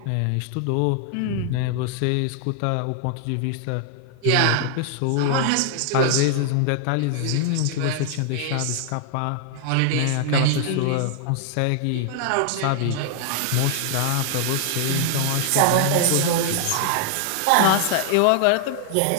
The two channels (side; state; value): both; different; correlation 0.00